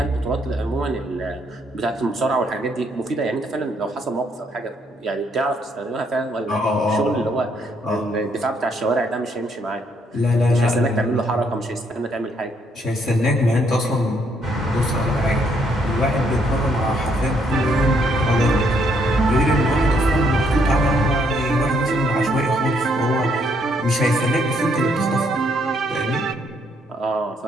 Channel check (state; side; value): normal; both; correlation 0.71